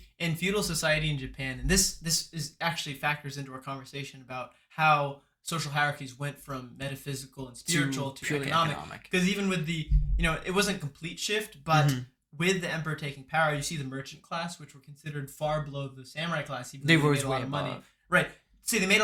in feudal society in Japan, and this is actually factors into our conversation about how social hierarchies went from metaphysical and spiritual to economic. Because even with the, it wasn't a complete shift, but with the emperor taking power, you see the merchant class, which were considered far below the samurai class, even though they made a lot of money. Right. See, they made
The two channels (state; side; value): identical; both; correlation 1.00